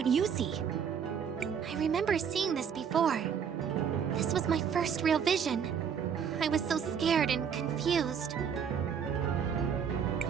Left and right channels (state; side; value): quieter; left; 7.4 dB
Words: you see. I remember seeing this before. This was my first real vision. I was so scared and confused.